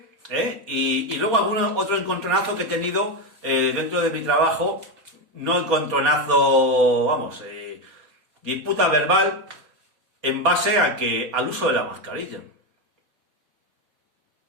y luego otro encontronazo que he tenido dentro de mi trabajo, no encontronazo, vamos, disputa verbal en base al uso de la mascarilla.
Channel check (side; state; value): left; late; 4.2 ms